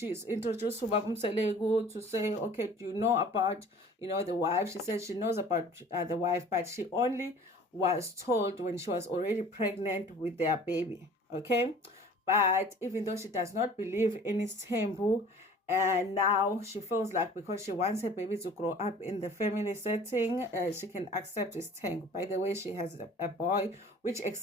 introduced to Babumselegu to say, okay, do you know about, the wife? She said she knows about the wife, but she only was told when she was already pregnant with their baby. Okay. But even though she does not believe in Isthembu, and now she feels like because she wants her baby to grow up in the family setting, she can accept his tank. By the way, she has a boy, which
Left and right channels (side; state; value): both; normal; correlation 0.47